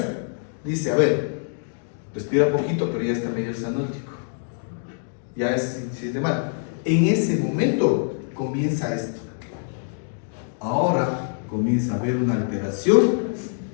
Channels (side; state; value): right; silent; digital silence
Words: Dice, a ver, respira poquito, pero ya está medio sanótico. Ya se siente mal. En ese momento comienza esto. Ahora comienza a haber una alteración